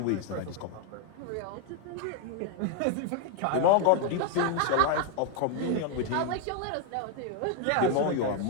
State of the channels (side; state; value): both; different; correlation 0.00